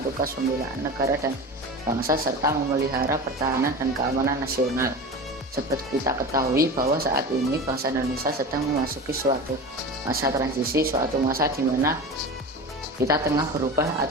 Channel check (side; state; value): both; normal; correlation 0.30